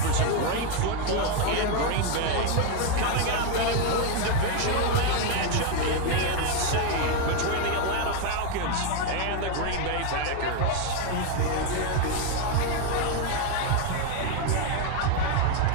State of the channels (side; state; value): both; different; correlation 0.02